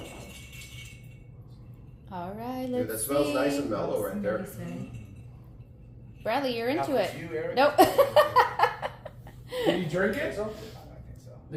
All right, Dude, let's that smells see. nice and mellow right there. Bradley, you're into Now, it. for you, Eric? Nope. Did he drink it? I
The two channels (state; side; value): identical; both; correlation 1.00